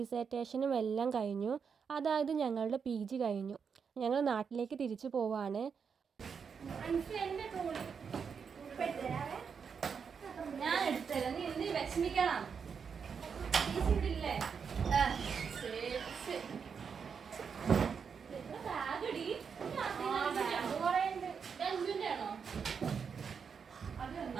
എല്ലാം കഴിഞ്ഞു. അതായത് ഞങ്ങളുടെ PG കഴിഞ്ഞു. ഞങ്ങൾ നാട്ടിലേക്ക് തിരിച്ചു പോവാണ്.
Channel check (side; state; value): left; quieter; 6.3 dB